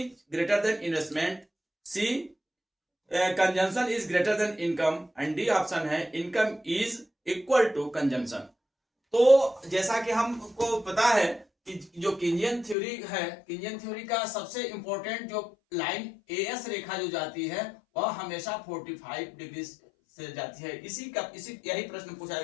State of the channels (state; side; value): drops out; right; at 12.8 s